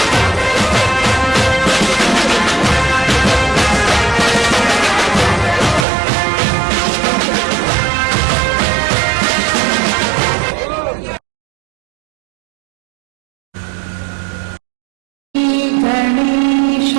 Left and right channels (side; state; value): left; drops out; at 5.9 s